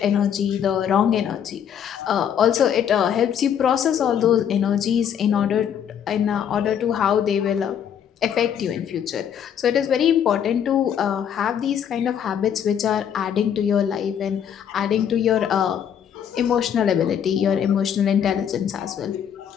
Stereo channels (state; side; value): quieter; right; 8.7 dB